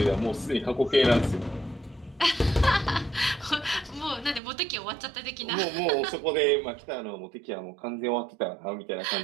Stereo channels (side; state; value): left; drops out; at 4.4 s